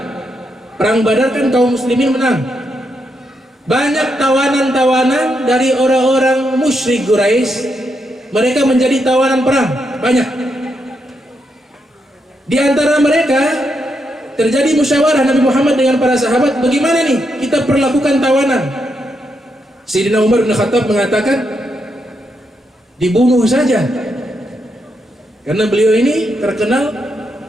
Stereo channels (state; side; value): normal; both; correlation 0.81